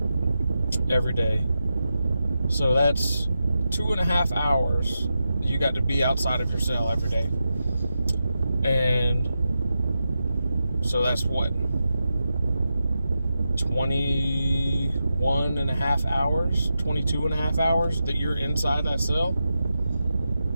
every day. So that's 2.5 hours you got to be outside of your cell every day. And so that's what? 21.5 hours, 22.5 hours that you're inside that cell.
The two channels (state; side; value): inverted; both; correlation -0.89